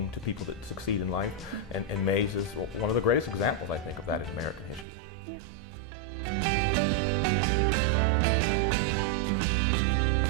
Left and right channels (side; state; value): left; drops out; at 4.9 s